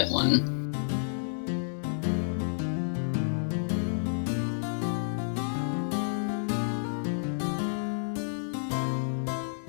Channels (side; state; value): right; silent; digital silence